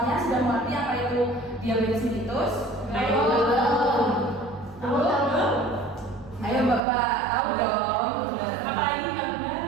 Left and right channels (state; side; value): drops out; left; at 6.8 s